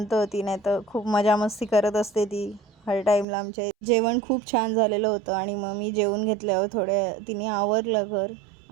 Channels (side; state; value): left; drops out; at 3.2 s